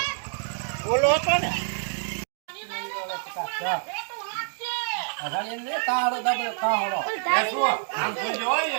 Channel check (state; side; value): silent; left; digital silence